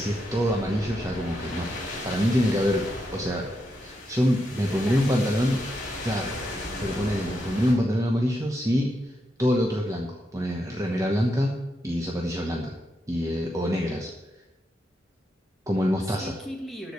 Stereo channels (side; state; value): both; normal; correlation 0.83